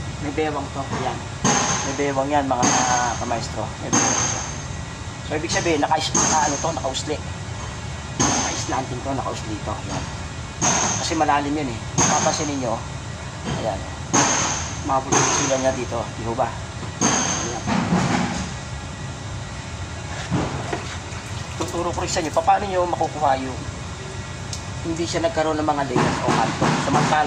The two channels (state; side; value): identical; both; correlation 1.00